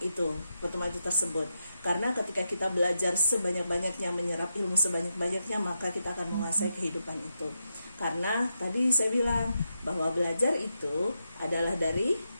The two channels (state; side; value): inverted; both; correlation -0.85